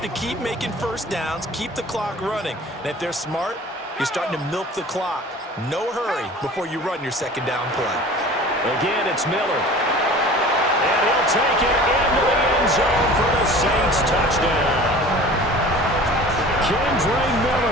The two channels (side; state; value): both; normal; correlation 0.42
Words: to keep making first downs, keep the clock running. And if they're smart, you're starting to milk the clock. No hurry before you run your second down play. Again, it's Miller. And he'll take it into the end zone for the Saints touchdown. Kendre